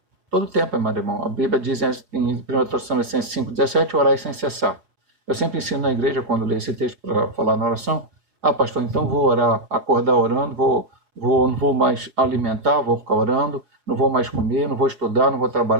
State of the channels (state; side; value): late; left; 5.2 ms